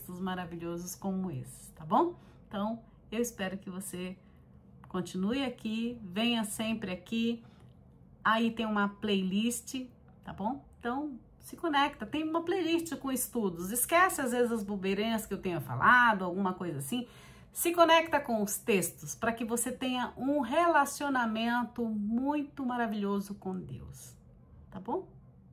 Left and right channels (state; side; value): identical; both; correlation 1.00